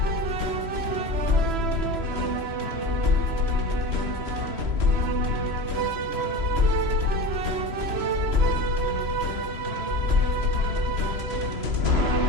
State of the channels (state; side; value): late; left; 3.0 ms